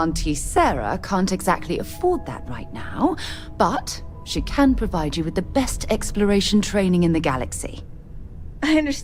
Sarah can't exactly afford that right now, but she can provide you with the best exploration training in the galaxy. I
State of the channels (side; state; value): both; identical; correlation 1.00